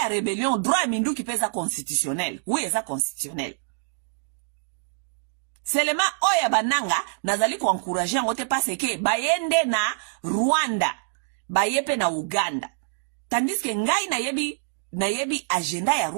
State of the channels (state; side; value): silent; left; digital silence